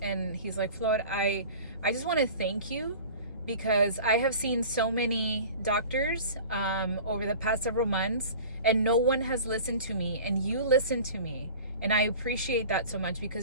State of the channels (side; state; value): both; inverted; correlation -0.40